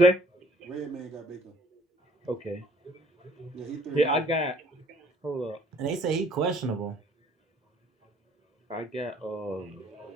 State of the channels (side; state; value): both; normal; correlation 0.58